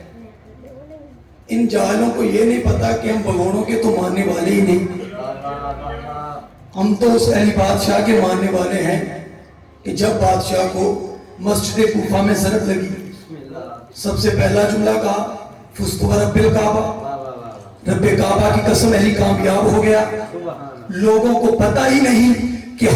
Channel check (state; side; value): identical; both; correlation 1.00